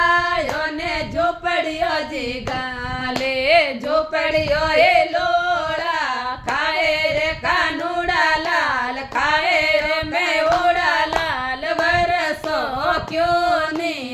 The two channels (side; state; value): both; identical; correlation 1.00